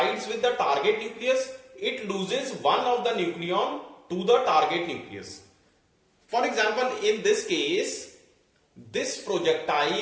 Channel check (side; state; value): both; identical; correlation 1.00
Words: with the target nucleus, it loses one of the nucleon to the target nucleus. For example, in this case, this